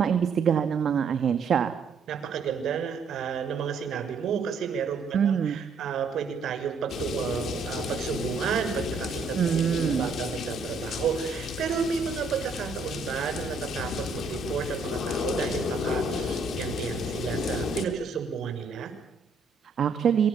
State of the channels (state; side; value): quieter; left; 4.2 dB